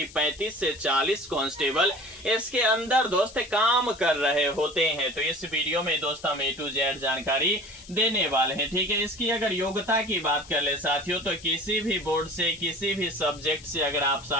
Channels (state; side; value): noise; left; hiss, 19 dB below the sound